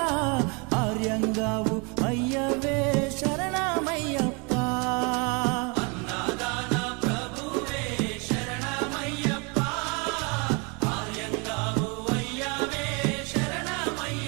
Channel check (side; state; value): left; quieter; 31.5 dB